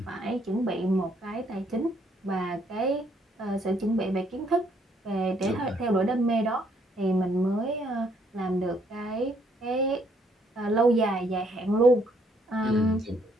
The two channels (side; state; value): both; normal; correlation 0.69